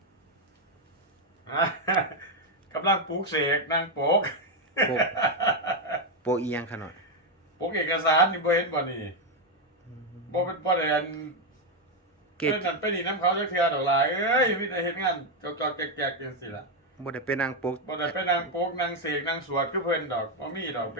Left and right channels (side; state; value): both; normal; correlation 0.04